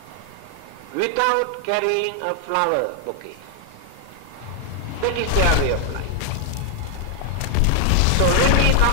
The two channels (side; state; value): both; different; correlation 0.00